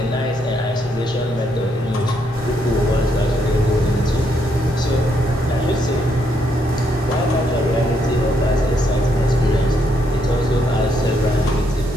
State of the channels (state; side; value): normal; both; correlation 0.75